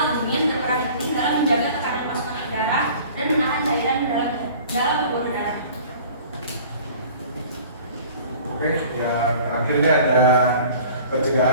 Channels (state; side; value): inverted; both; correlation -0.46